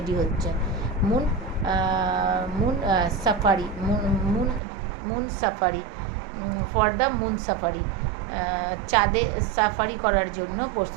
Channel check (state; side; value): drops out; left; at 4.6 s